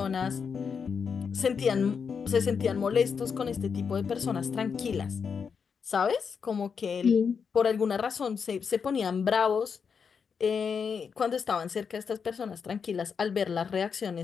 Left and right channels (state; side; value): quieter; right; 6.2 dB